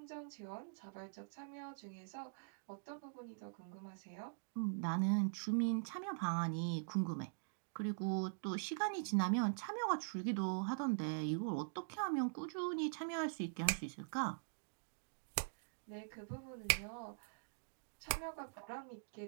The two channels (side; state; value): left; silent; digital silence